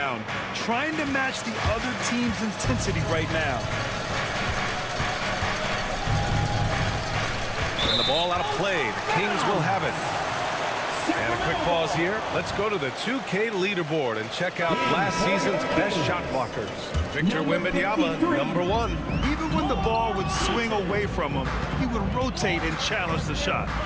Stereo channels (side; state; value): both; identical; correlation 1.00